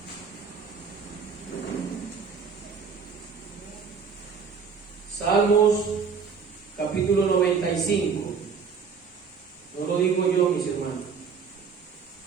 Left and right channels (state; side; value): quieter; left; 5.9 dB